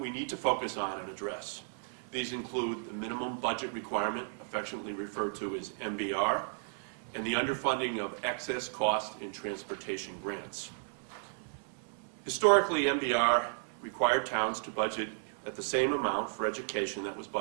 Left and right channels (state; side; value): silent; left; digital silence